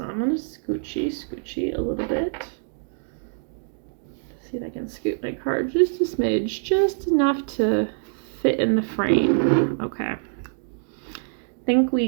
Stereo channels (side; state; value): left; silent; digital silence